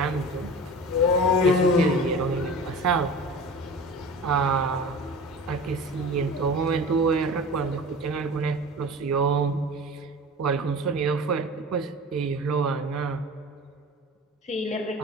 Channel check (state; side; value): normal; both; correlation 0.36